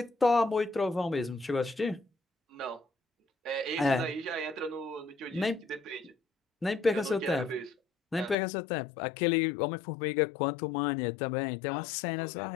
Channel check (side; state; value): right; drops out; at 8.3 s